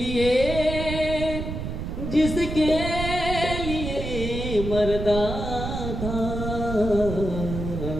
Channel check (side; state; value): right; noise; rumble, 5 dB below the sound